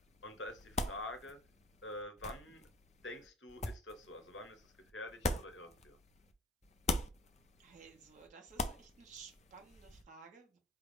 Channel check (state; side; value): normal; both; correlation 0.46